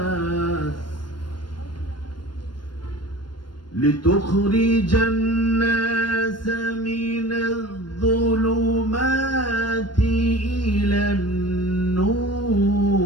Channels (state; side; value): late; right; 0.72 ms